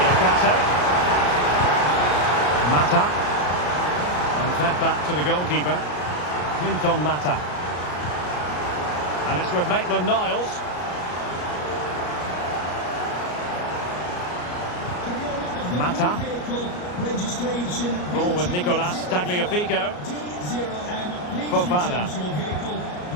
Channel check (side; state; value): right; late; 34 ms